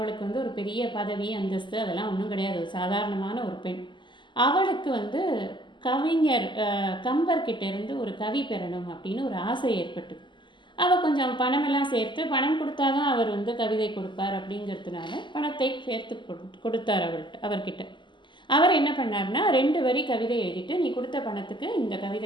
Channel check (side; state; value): right; late; 0.23 ms